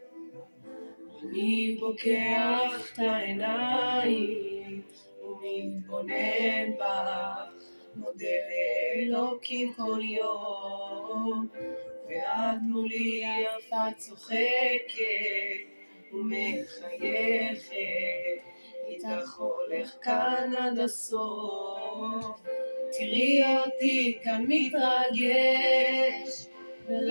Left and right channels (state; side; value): inverted; both; correlation -1.00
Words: אני פוקח את העיניים ומתבונן בך, מודה לאלוקים כל יום, ואת מולי יפה צוחקת ומחייכת, איתך הולך כאן עד הסוף. תראי אותי כאן מתרגש